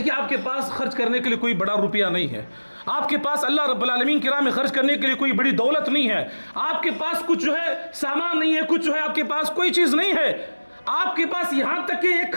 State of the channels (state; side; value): inverted; both; correlation -1.00